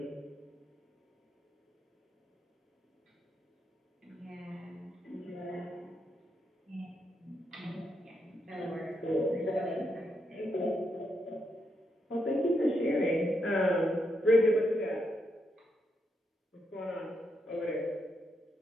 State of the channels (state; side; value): normal; both; correlation 0.81